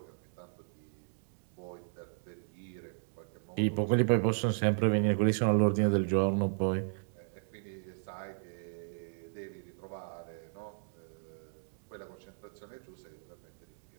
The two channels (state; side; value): silent; left; digital silence